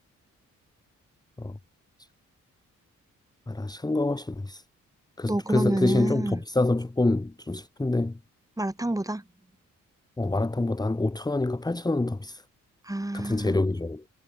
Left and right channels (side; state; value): both; normal; correlation 0.91